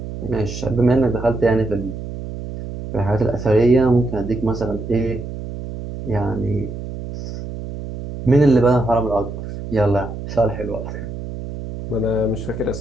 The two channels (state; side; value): noise; right; hum, 9 dB below the sound